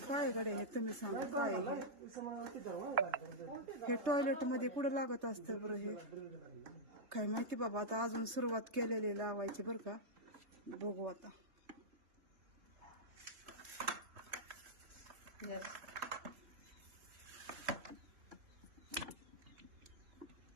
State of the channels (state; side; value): late; left; 3.3 ms